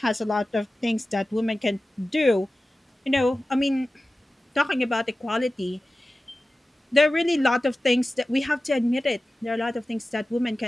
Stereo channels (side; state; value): both; normal; correlation 0.95